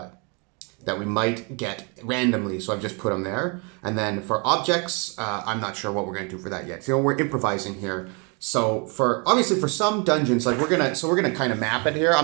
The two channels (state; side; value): quieter; left; 33.4 dB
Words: we might get randomly, so I've just put them there. And then for objects, I'm not sure what we're going to do for that yet. So we're improvising here. So obviously for some dungeons, like we're gonna kind of map it here.